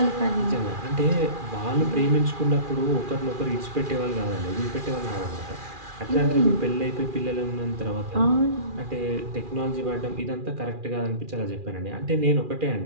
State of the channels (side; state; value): left; late; 2.4 ms